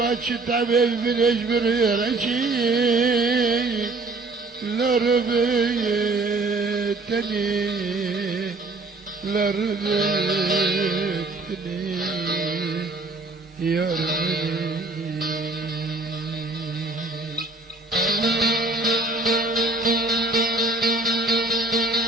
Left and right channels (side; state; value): left; quieter; 3.3 dB